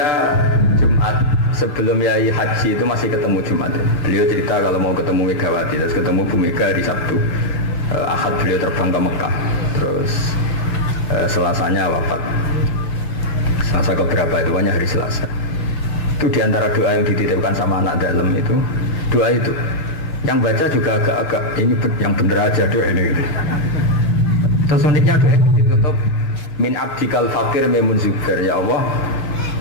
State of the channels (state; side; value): late; right; 6.7 ms